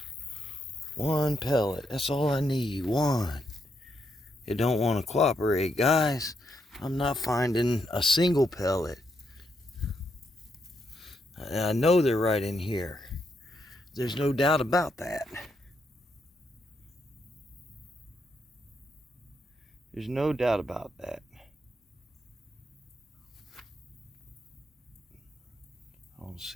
One pellet, that's all I need, one. It don't want to cooperate, guys. I'm not finding a single pellet. I know they're right in here. There's no doubt about that. There's no doubt about that. I don't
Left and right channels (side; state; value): both; normal; correlation 0.79